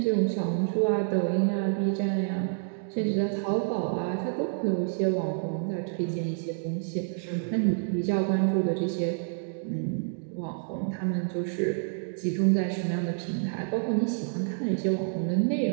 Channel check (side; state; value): left; silent; digital silence